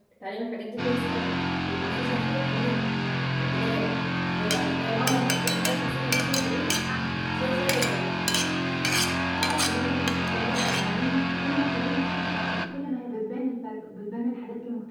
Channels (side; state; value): both; identical; correlation 1.00